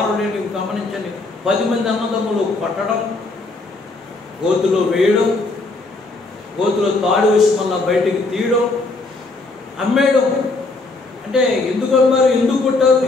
నేను గమనించండి. 10 మంది అన్నదమ్ములు కొట్టడం, గోతులో వేయడం, గోతులో తాడు వేసి మళ్ళీ బయటికి తీయడం, అమ్మేయడం. అంటే ఎందుకు అమ్మారు, ఎందుకు కొట్టారు,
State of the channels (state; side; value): quieter; right; 3.4 dB